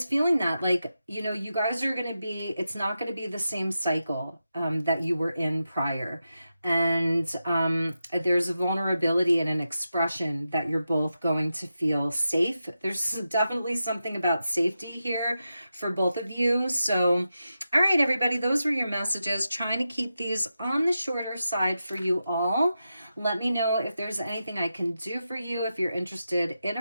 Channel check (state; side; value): inverted; both; correlation -0.89